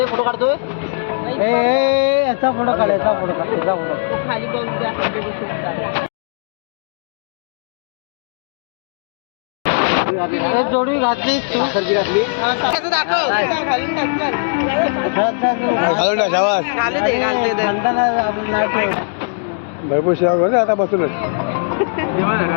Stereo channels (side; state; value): right; silent; digital silence